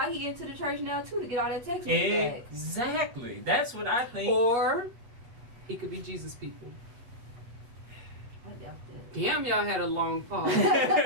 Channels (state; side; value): late; left; 8.2 ms